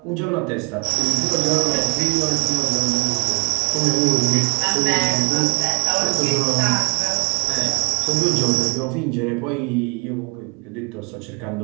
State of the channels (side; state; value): left; quieter; 28.3 dB